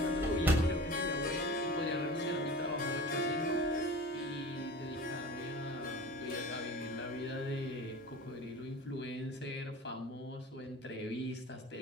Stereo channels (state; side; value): normal; both; correlation 0.37